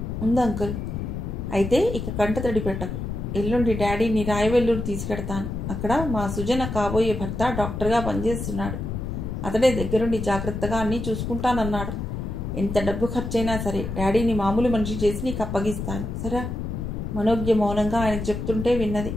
ఉంది అంకుల్. అయితే ఇక కంట తడి పెట్టకు. ఎల్లుండి డాడీని రాయవెల్లూరు తీసుకెడతాను. అక్కడ మా సుజన కాబోయే భర్త డాక్టర్గా పనిచేస్తున్నాడు. అతడే దగ్గరుండి జాగ్రత్తగా అన్నీ చూసుకుంటానన్నాడు. ఎంత డబ్బు ఖర్చైనా సరే డాడీని మామూలు మనిషి చేసి నీకు అప్పగిస్తాను, సరే? మనోజ్ఞ మౌనంగా ఆయనకు చెప్తుంటే విన్నది.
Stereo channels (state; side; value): noise; left; rumble, 5 dB below the sound